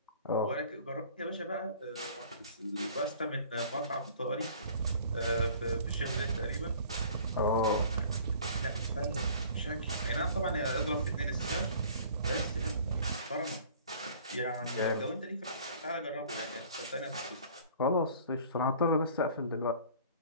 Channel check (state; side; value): inverted; both; correlation -0.50